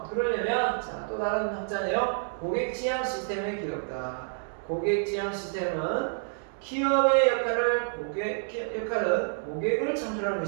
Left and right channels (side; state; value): left; silent; digital silence